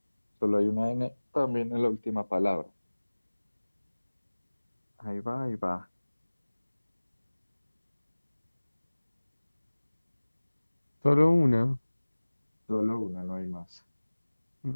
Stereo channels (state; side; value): inverted; both; correlation -1.00